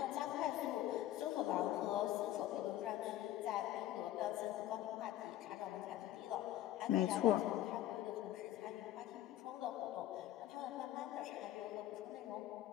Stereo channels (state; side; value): quieter; right; 13.5 dB